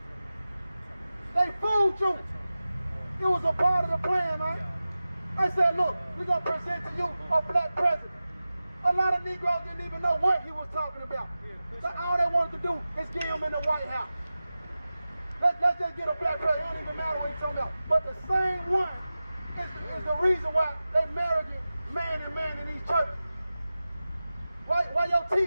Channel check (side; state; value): both; inverted; correlation -0.95